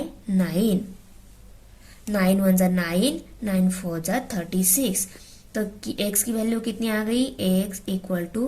9। 9 1 जा 9, 9 4 जा 36। तो x की वैल्यू कितनी आ गई? x equal to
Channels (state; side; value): identical; both; correlation 1.00